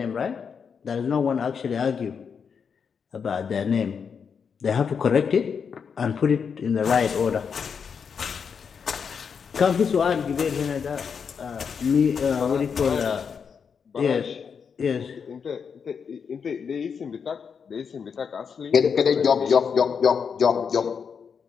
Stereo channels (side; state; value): right; quieter; 6.4 dB